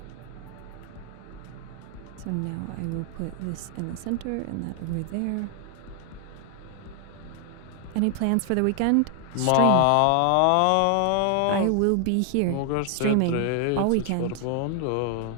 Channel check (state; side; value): different; both; correlation 0.00